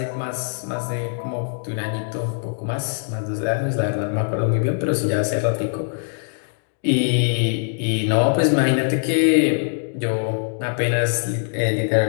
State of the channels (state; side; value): silent; right; digital silence